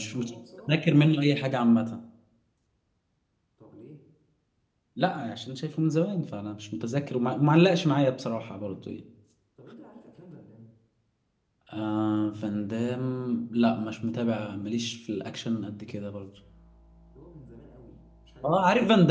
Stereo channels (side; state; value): both; identical; correlation 1.00